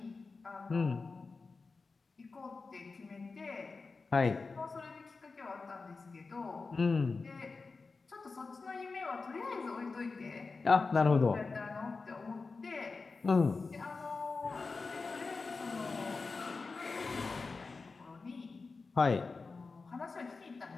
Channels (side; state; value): right; quieter; 4.2 dB